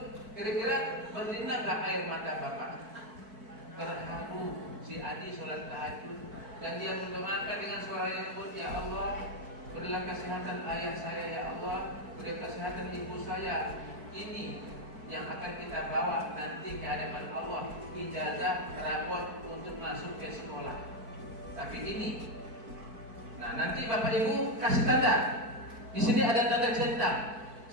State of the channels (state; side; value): late; left; 4.6 ms